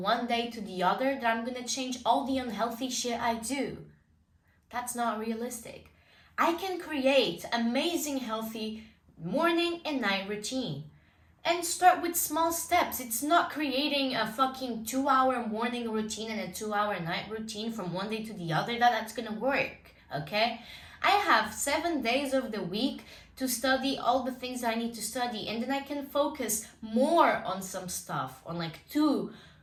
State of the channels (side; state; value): both; identical; correlation 1.00